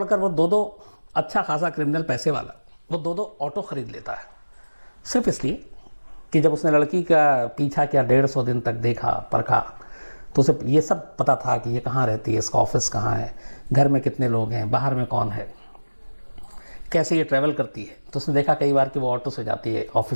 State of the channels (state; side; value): inverted; both; correlation -1.00